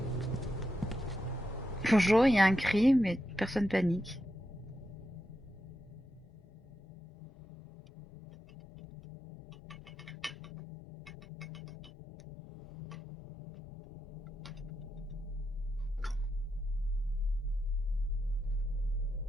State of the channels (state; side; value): normal; both; correlation 0.86